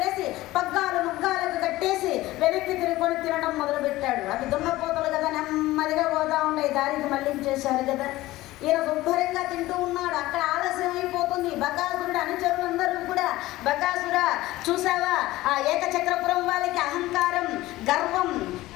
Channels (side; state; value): right; quieter; 17.4 dB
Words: పగ్గాలు ముగ్గాలకు కట్టేసి వెనక్కి తిరుగుకొని తినడం మొదలుపెట్టాడు. అవి దున్నపోతలు కదా, నెమ్మదిగా పోతా ఉన్నాయి, దారికి మళ్ళించేశారు కదా. ఈయన శుభ్రంగా తింటూ ఉన్నాడు. అక్కడ ఆలస్యం అయిపోతుంది. బకాసురుడు అనుచరులందరూ కూడా, బకాసురా చూసావా ఆ ఏకచక్రపురం వాళ్ళకి అహంకారం, గర్వం,